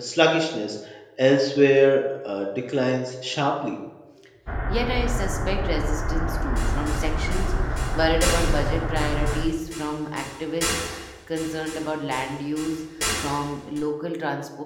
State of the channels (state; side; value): identical; both; correlation 1.00